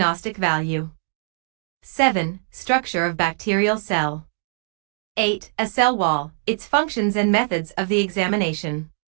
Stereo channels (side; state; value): left; silent; digital silence